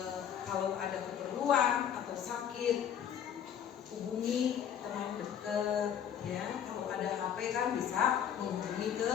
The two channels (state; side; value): quieter; right; 9.0 dB